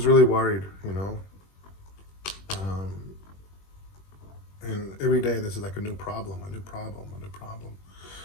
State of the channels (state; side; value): late; right; 21 ms